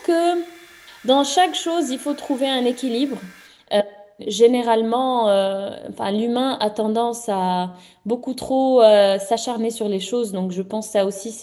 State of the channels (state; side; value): identical; both; correlation 1.00